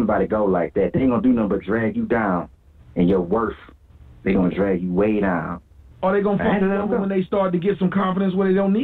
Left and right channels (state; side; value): identical; both; correlation 1.00